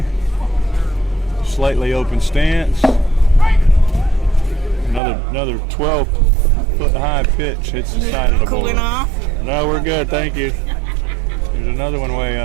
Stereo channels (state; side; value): drops out; left; at 5.0 s